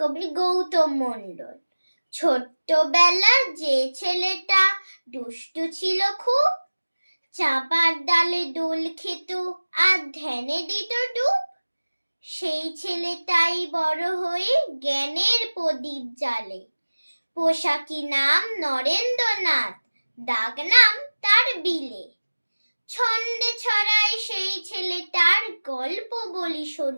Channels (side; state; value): both; inverted; correlation -1.00